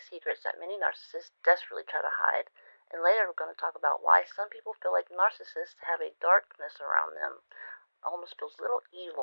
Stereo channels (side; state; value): both; inverted; correlation -1.00